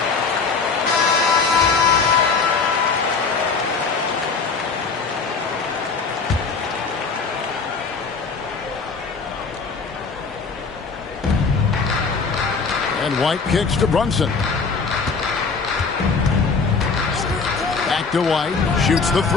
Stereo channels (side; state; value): right; quieter; 4.8 dB